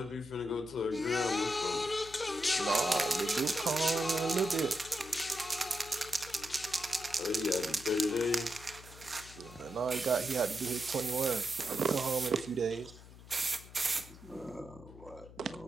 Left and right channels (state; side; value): noise; left; hum, 18 dB below the sound